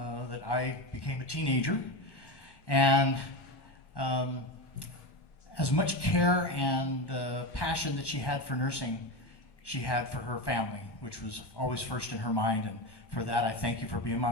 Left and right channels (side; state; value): right; late; 1.1 ms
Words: that I became a teenager. And as much care and passion that she had for nursing, she had for her family, which was always first in her mind. And for that, I thank you for being my